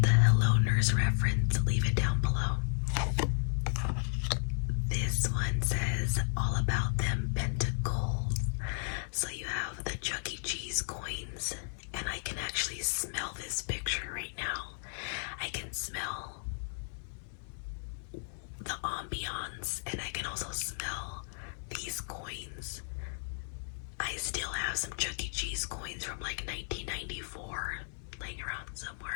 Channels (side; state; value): right; silent; 55 dB below the other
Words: the Hello Nurse reference. Leave it down below. This one says All About Them Pentacles. So you have the Chuck E. Cheese coins, and I can actually smell this picture right now. I can smell the ambiance, and I can also smell these coins. I still have some Chuck E. Cheese coins from like 1994 laying around